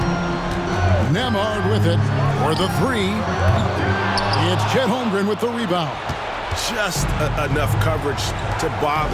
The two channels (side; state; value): both; identical; correlation 1.00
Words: Nembhard with it for the 3. It's Chet Holmgren with the rebound. Just enough coverage to